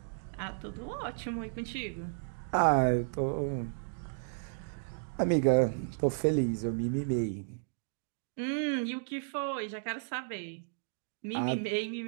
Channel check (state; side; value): silent; left; digital silence